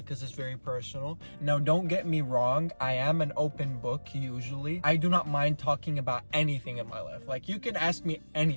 it's very personal. Now, don't get me wrong. I am an open book usually. I do not mind talking about anything in my life. Like, you can ask me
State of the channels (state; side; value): inverted; both; correlation -1.00